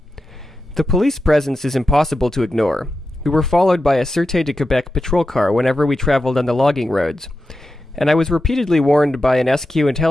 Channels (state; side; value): normal; both; correlation 0.90